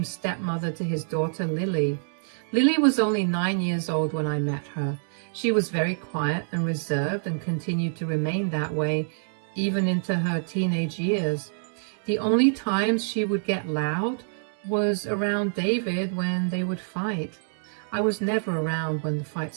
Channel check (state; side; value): silent; left; digital silence